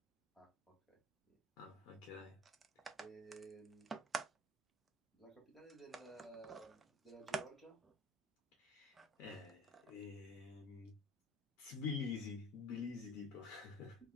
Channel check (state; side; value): normal; both; correlation 0.46